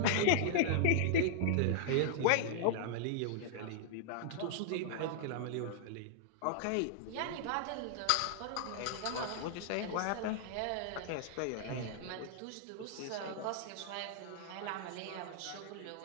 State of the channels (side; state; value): both; different; correlation -0.01